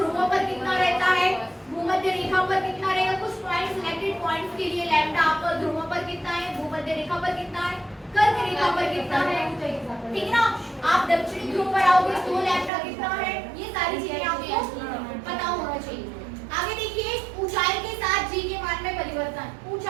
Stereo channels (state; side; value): drops out; left; at 12.7 s